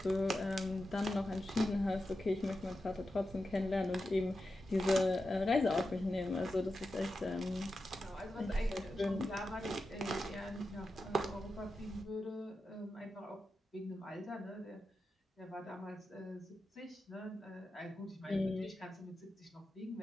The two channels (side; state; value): both; normal; correlation 0.90